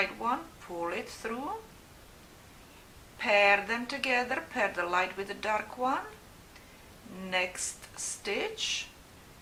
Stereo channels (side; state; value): both; identical; correlation 1.00